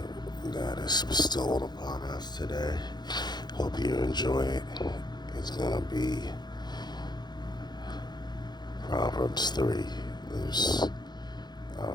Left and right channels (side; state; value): right; late; 0.21 ms